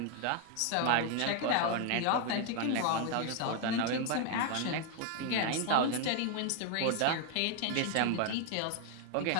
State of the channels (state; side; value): different; both; correlation 0.01